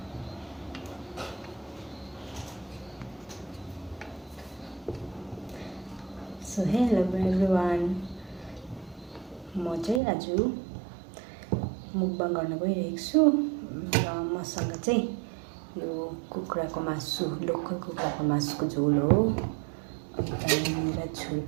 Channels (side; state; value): left; drops out; at 10.0 s